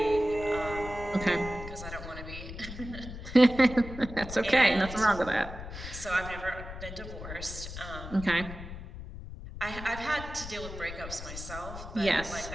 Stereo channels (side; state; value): left; noise; rumble, 10 dB below the sound